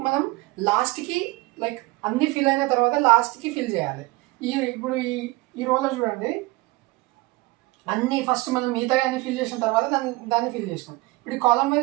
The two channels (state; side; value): quieter; left; 22.2 dB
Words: మనం లాస్ట్కి లైక్ అన్ని ఫిల్ అయిన తర్వాత లాస్ట్కి ఫిల్ చేయాలి. ఇప్పుడు ఈ రోలో చూడండి, అన్ని ఫస్ట్ మనం మిగతా అన్ని ఫిల్ చేసిన తర్వాత దాన్ని ఫిల్ చేసినాం. ఇప్పుడు కాలమ్